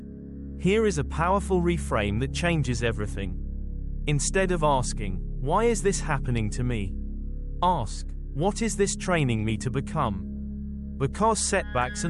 Here is a powerful reframe that changes everything. Instead of asking, why is this happening to me? Ask, what is this training me to become? Because setbacks are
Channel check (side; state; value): both; identical; correlation 1.00